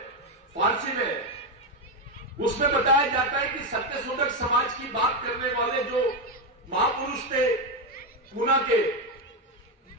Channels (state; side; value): normal; both; correlation 0.08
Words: फारसी में, उसमें बताया जाता है कि सत्यशोधक समाज की बात करने वाले जो महापुरुष थे पूना के,